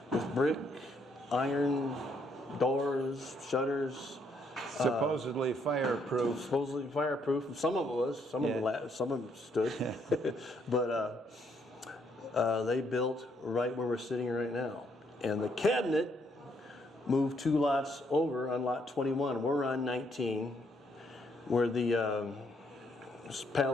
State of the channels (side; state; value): both; normal; correlation 0.71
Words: with brick, iron, doors, shutters. Supposedly fireproof. Supposedly fireproof. Some of it was. Some of them stood. But they built right where we're sitting right now. And the cabinet moved 2 lots over on lot 21. We're on 19, where the